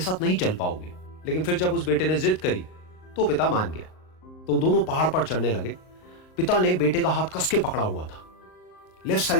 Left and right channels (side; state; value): right; late; 38 ms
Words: नहीं चल पाओगे। लेकिन फिर जब उस बेटे ने जिद करी तो पिता मान गया। तो दोनों पहाड़ पर चढ़ने लगे। पिता ने बेटे का हाथ कस के पकड़ा हुआ था। लेफ्ट